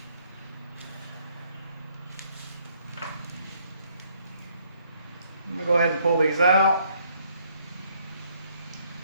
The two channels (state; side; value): inverted; both; correlation -0.67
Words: I'm going to go ahead and pull these out.